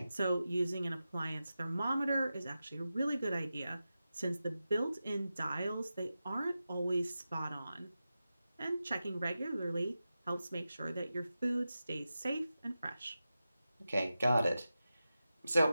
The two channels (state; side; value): inverted; both; correlation -0.92